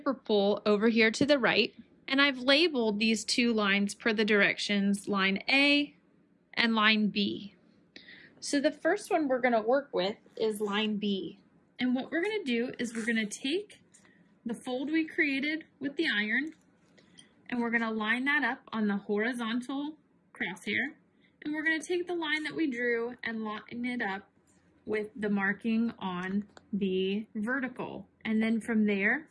pull over here to the right, and I've labeled these two lines per the directions, line A and line B. So the first one we're going to work with is line B. And what we're going to do is we're going to take the fold we created with the iron and we're going to line that up on the horizontal crosshair, and we're going to take the line that we drew and line it up with the marking on the vertical. And then from there,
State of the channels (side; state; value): both; identical; correlation 1.00